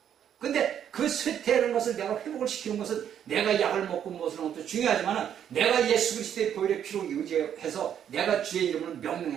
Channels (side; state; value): left; quieter; 9.3 dB